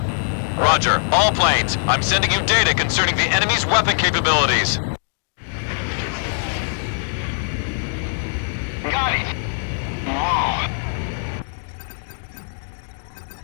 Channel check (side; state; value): right; silent; digital silence